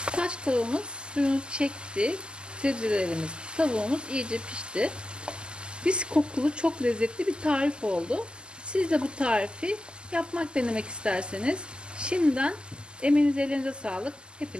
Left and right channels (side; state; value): left; late; 0.048 ms